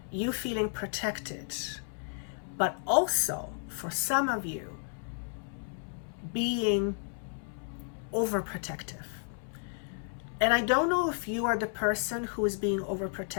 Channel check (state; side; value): silent; right; 56 dB below the other